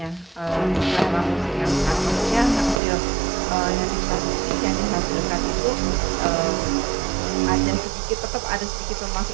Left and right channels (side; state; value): left; drops out; at 2.8 s